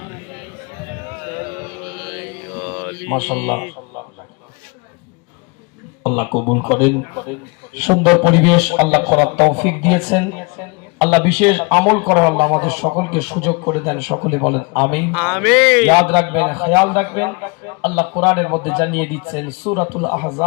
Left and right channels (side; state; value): right; quieter; 30.1 dB